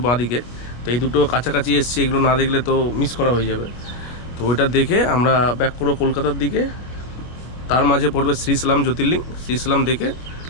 বাঁ দিকে, তো এই দুটো কাছাকাছি এসছে, এগুলো না দেখলে তো মিস করা হয়ে যাবে। তো ওইটা দেখে আমরা ব্যাক করবো কলকাতার দিকে। তার মাঝে পড়বে শ্রীশৈলম জ্যোতির্লিঙ্গ, শ্রীশৈলম দেখে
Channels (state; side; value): late; right; 25 ms